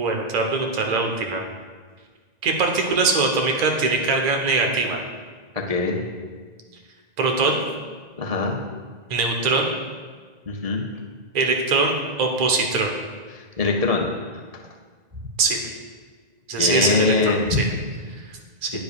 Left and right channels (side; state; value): left; late; 1.9 ms